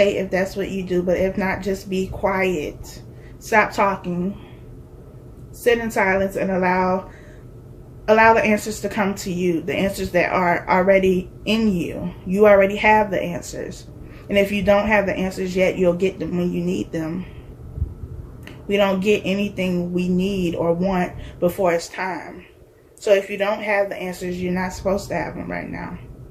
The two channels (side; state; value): both; identical; correlation 1.00